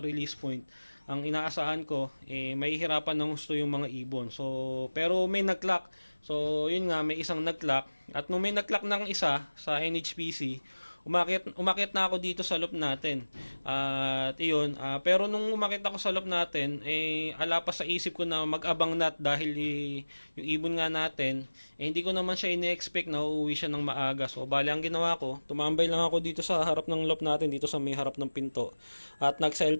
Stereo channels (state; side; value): inverted; both; correlation -1.00